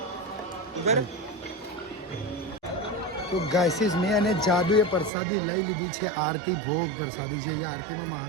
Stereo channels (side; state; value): left; drops out; at 5.1 s